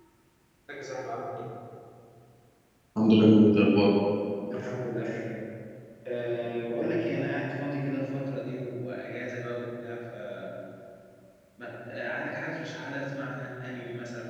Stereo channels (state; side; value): identical; both; correlation 1.00